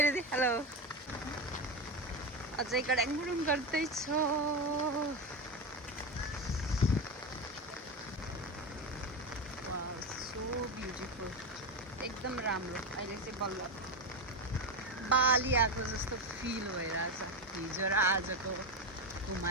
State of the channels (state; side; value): normal; both; correlation 0.15